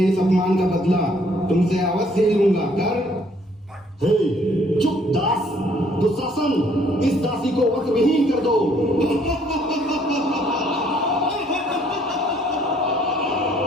इस अपमान का बदला तुमसे अवश्य ही लूंगा। कर। हे, चुप दास। दुशासन, इस दासी को वस्त्रविहीन कर दो।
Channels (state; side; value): normal; both; correlation 0.63